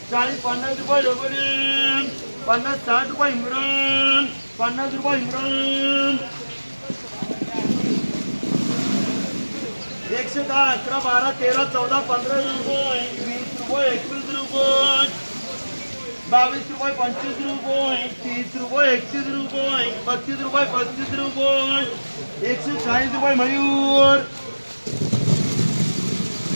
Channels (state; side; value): inverted; both; correlation -1.00